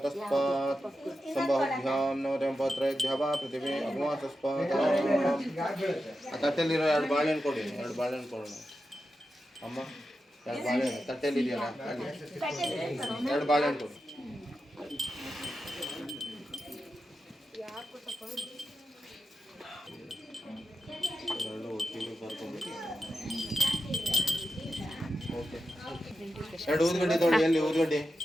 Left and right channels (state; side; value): normal; both; correlation 0.90